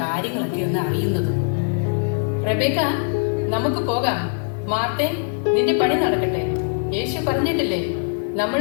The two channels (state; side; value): silent; right; 64 dB below the other